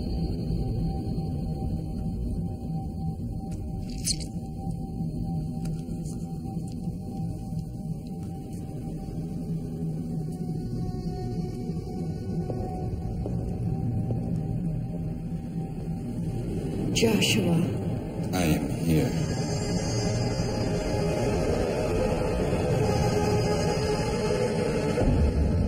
Joshua. I am here.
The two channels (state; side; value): identical; both; correlation 1.00